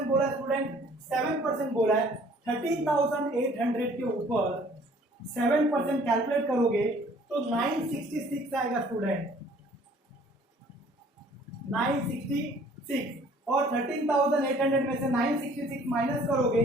बोला है स्टूडेंट? 7% बोला है। 13,800 के ऊपर 7% कैलकुलेट करोगे तो 966 आएगा स्टूडेंट, 966। और 13,800 में से 966 माइनस करोगे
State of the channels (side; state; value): both; normal; correlation 0.55